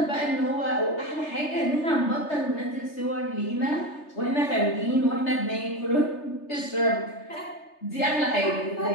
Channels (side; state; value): right; late; 3.3 ms